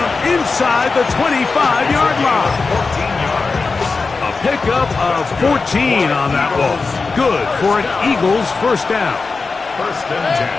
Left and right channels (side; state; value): right; quieter; 4.2 dB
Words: inside the 25-yard line. 14 yards. A pickup of 14 on that ball. Good for an Eagles first down. 1st and 10